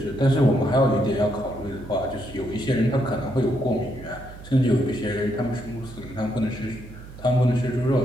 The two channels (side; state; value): right; noise; hum, 16 dB below the sound